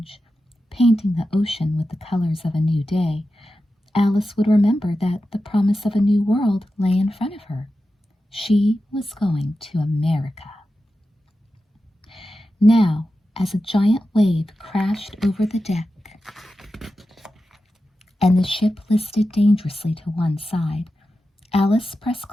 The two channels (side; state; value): both; normal; correlation 0.92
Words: painting the ocean with the colors of a new day, Alice would remember that the promise of a new world lay in front of her. She was going to America. Now, as a giant wave crashed over the deck and the ship listed dangerously to one side, Alice pressed